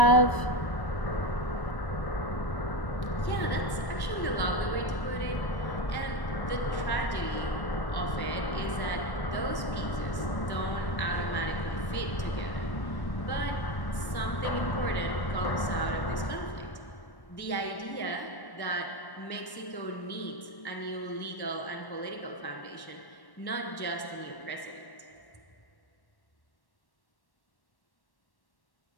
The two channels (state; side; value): late; right; 1.1 ms